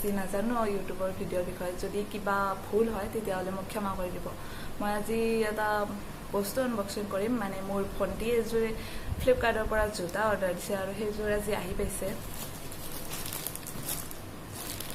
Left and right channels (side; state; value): both; identical; correlation 1.00